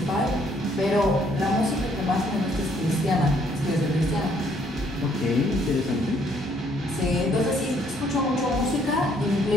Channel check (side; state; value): both; normal; correlation 0.66